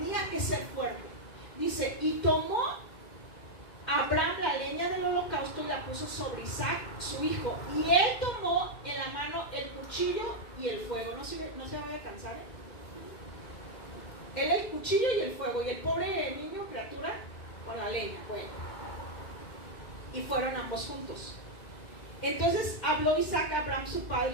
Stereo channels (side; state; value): right; late; 2.1 ms